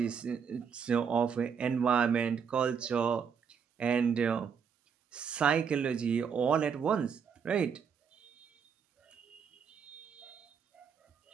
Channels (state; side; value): quieter; left; 6.7 dB